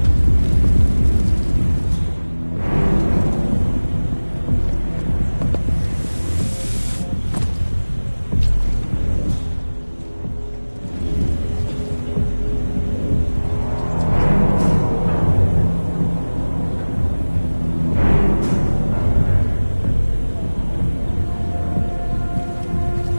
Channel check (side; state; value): both; inverted; correlation -1.00